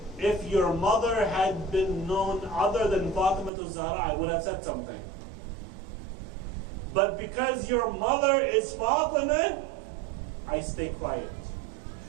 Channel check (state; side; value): drops out; left; at 3.5 s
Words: if your mother had been known other than Fatima Al-Zahra, I would have said something. But because your mother is Fatima, I stay quiet.